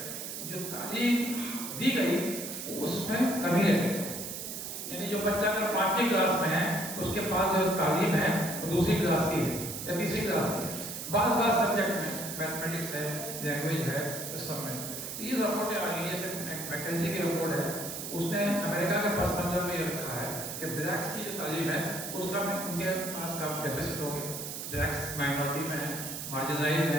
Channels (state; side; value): noise; right; hiss, 7 dB below the sound